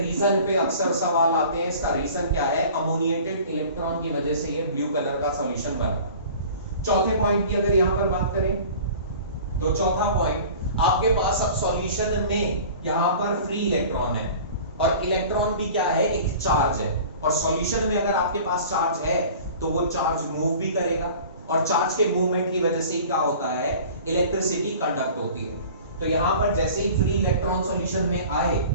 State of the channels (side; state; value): both; inverted; correlation -0.43